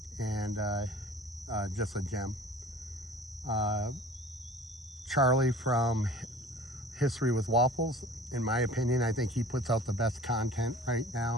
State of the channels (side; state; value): both; normal; correlation 0.45